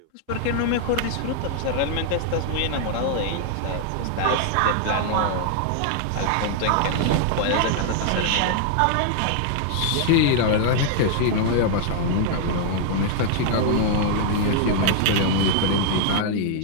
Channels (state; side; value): different; both; correlation 0.00